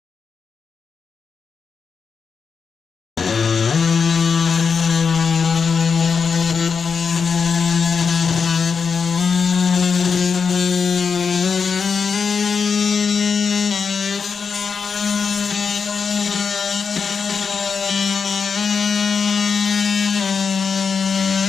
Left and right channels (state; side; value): quieter; right; 5.7 dB